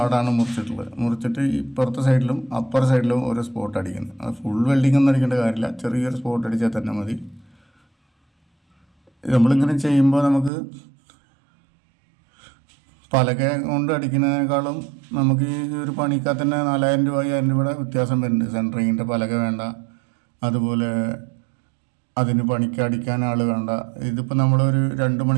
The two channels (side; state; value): left; drops out; at 10.5 s